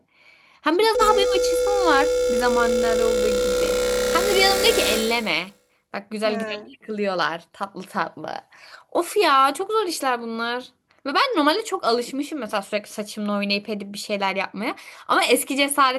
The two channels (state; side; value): identical; both; correlation 1.00